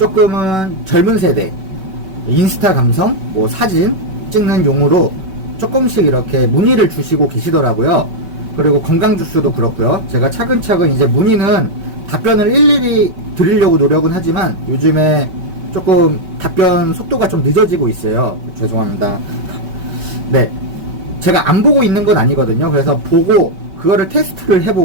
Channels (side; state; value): left; late; 5.3 ms